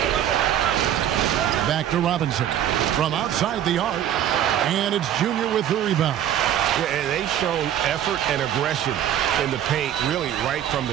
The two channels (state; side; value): quieter; left; 10.8 dB